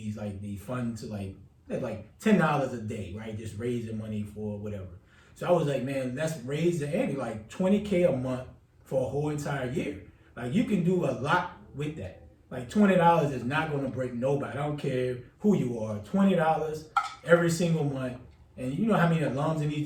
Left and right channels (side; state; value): both; identical; correlation 1.00